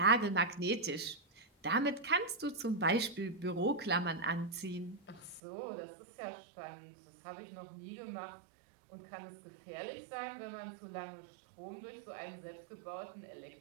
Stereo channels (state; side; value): drops out; left; at 5.4 s